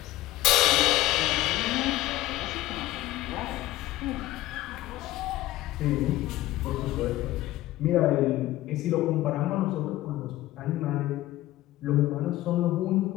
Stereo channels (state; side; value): quieter; right; 16.1 dB